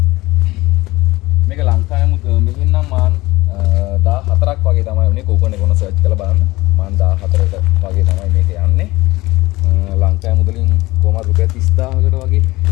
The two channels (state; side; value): quieter; right; 20.0 dB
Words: මේක ලංකාවේ මෙහෙන් නම් මාන් 14ක් වගේ තමයි උනේ. කෝපන් එක ඔන්න සර්ච් කරලා බලන්න. මාන් 14කට වගේ තමයි මේක යන්නේ. ලංකාවේ මුදලින් කොහමද රුපියල් 30000කට වගේ